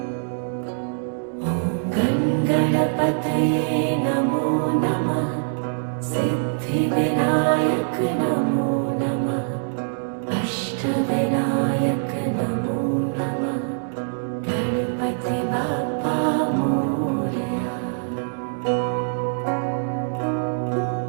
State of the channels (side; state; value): left; silent; digital silence